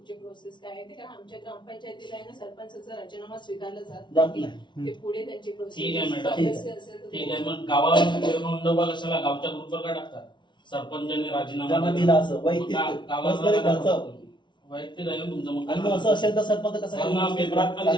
प्रोसेस काय आहे ते, कारण आमच्या ग्रामपंचायतीला आहे ना सरपंचाचा राजीनामा स्वीकारला जात जात नाही. नाही. ते पुढे त्यांची ठीक आहे प्रोसेस मॅडम. ठीक आहे, मग गावाला नोंदवा कशाला? गावच्या ग्रुपवर काय टाकतात? सरपंचाने राजीनामा ज्यांना दिला असं वैयक्तिक पर्सनली खर्च वैयक्तिक आहे ना तुमचं. मग आणि मग असं असेल तर सरपंच कसं कारण पेपरात पण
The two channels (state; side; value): late; right; 0.23 ms